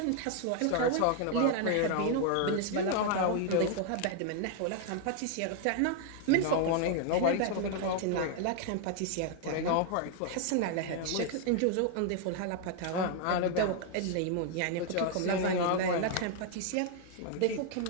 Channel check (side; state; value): both; different; correlation 0.00